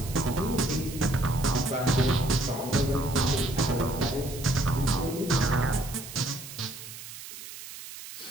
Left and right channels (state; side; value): noise; right; hiss, 13 dB below the sound